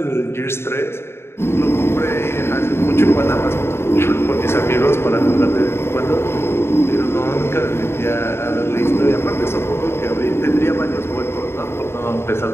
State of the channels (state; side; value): late; right; 0.12 ms